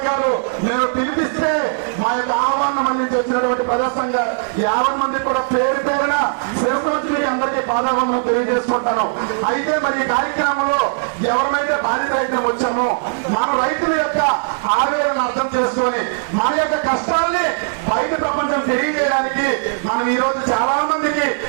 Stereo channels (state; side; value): silent; left; 56 dB below the other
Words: నేను పిలిపిస్తే మా యొక్క ఆహ్వానం అందించి వచ్చినటువంటి ప్రజా సంఘ 50 మంది కూడా పేరు పేరున శిరస్వతికి అందరికీ పాదావందనం తెలియజేసుకుంటాను. అయితే మరి ఈ కార్యక్రమంలో ఎవరినైతే బాధిత రైతులు వచ్చామో మన రైతుల యొక్క ఆవేదన అర్థం చేసుకొని మన యొక్క కష్టాల్ని బయట ప్రపంచం తెలియజేయడానికి మనం ఈ రోజు చాలా మందికి